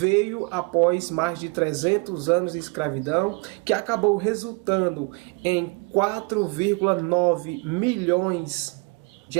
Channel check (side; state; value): left; quieter; 30.4 dB